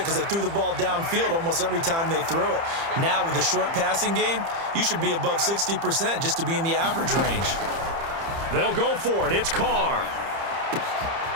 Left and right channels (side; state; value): left; late; 30 ms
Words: because they threw the ball downfield almost every time they threw it. Now with the short passing game, you should be above 60% just to be in the average range. They'll go for it. It's Carr.